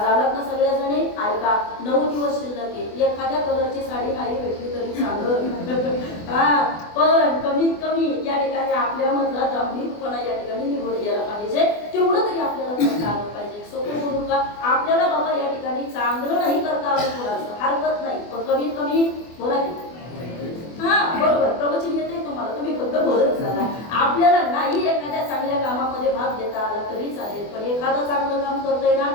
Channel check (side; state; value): right; late; 24 ms